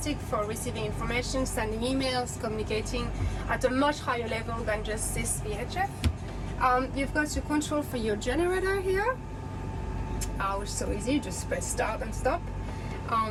for receiving information, sending emails, communicating at a much higher level than just this VHF. You've got your control for your generator here, which is so easy, just press start and stop.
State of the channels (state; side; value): identical; both; correlation 1.00